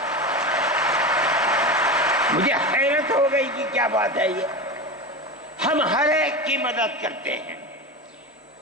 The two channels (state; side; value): normal; both; correlation 0.23